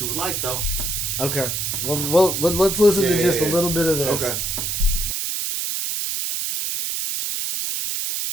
would like, though. Okay. Well let's listen to just a little bit of this. Okay.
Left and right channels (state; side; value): noise; right; hiss, 2 dB below the sound